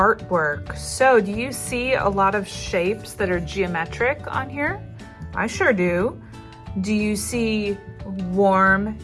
So do you see a lot of shapes that are geometric on here? I sure do. Do you see warm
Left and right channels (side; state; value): both; identical; correlation 1.00